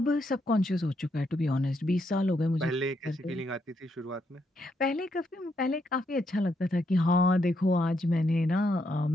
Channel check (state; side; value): normal; both; correlation 0.78